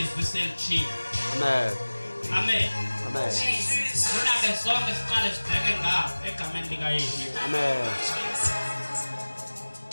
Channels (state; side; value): inverted; both; correlation -1.00